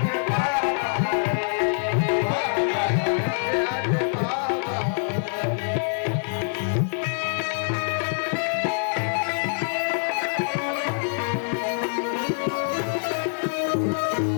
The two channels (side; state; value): right; silent; digital silence